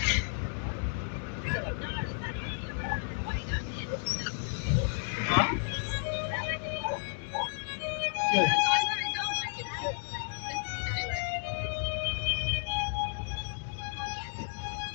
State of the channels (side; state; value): right; silent; digital silence